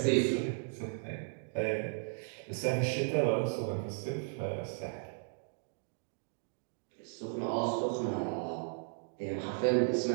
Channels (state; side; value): silent; left; digital silence